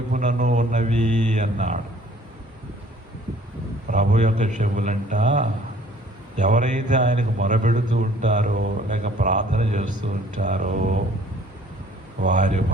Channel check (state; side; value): normal; both; correlation 0.56